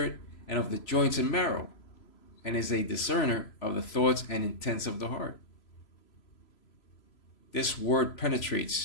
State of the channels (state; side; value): late; right; 3.0 ms